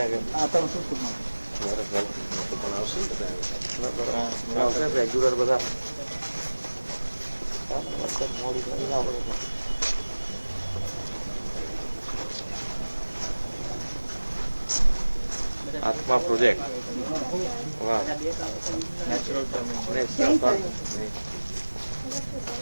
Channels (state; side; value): inverted; both; correlation -1.00